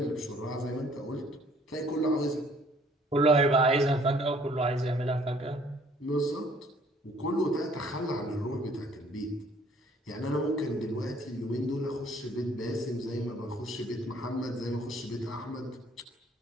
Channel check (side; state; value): both; normal; correlation 0.59